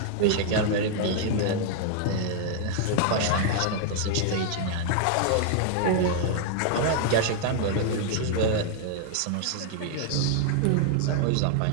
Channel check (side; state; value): both; different; correlation 0.00